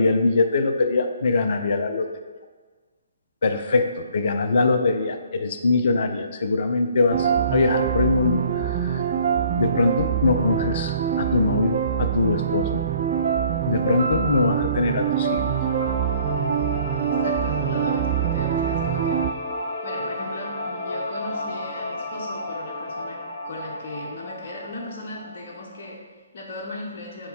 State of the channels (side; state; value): both; inverted; correlation -0.58